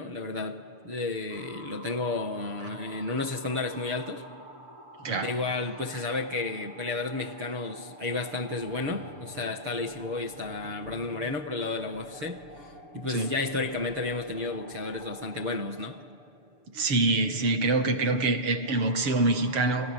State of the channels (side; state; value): left; late; 6.8 ms